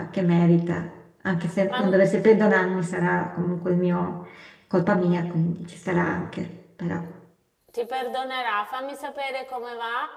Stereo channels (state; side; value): identical; both; correlation 1.00